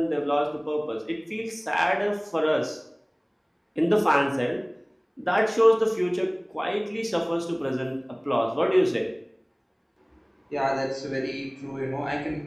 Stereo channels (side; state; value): both; identical; correlation 1.00